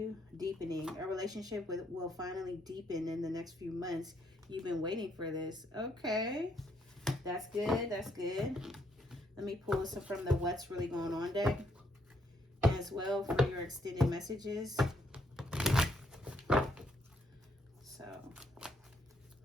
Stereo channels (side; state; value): both; normal; correlation 0.73